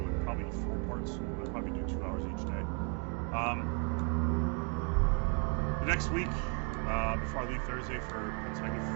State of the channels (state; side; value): quieter; left; 35.2 dB